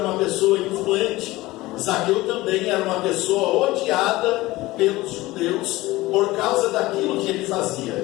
uma pessoa influente, Zaqueu também era uma pessoa odiada pelos judeus por causa daquilo que ele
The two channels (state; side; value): quieter; right; 18.9 dB